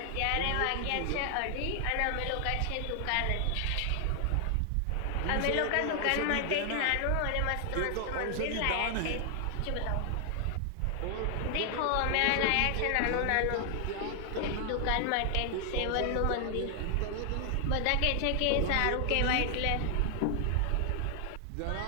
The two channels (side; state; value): both; different; correlation 0.00